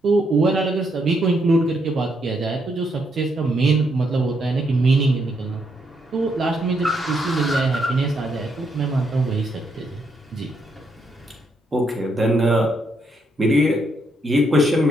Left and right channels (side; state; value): both; normal; correlation 0.76